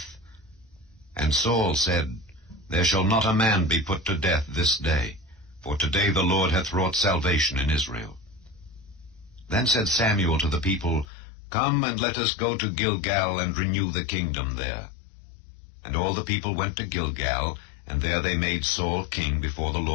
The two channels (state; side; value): drops out; right; at 11.1 s